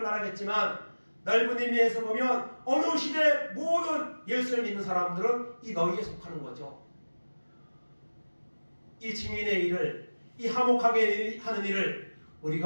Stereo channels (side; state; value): both; inverted; correlation -1.00